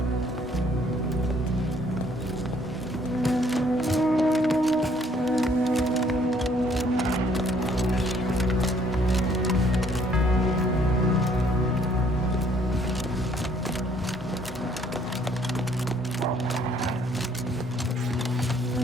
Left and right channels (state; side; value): normal; both; correlation 0.63